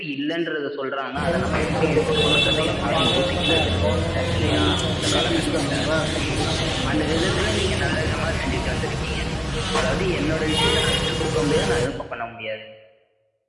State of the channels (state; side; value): identical; both; correlation 1.00